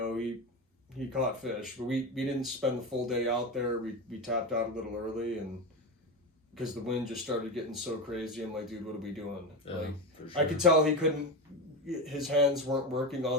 he caught fish, but we didn't spend the full day out there. We tapped out a little early, and because the wind just started getting so crazy, I'm like, dude, what are we doing? Yeah, for sure. I could tell his hands weren't working all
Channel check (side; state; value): both; normal; correlation 0.18